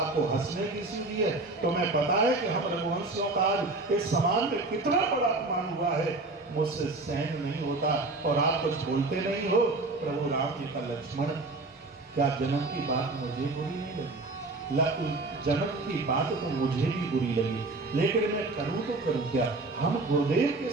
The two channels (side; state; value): left; quieter; 3.2 dB